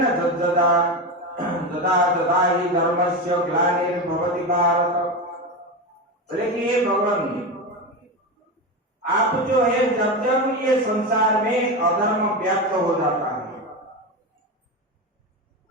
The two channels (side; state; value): both; normal; correlation 0.18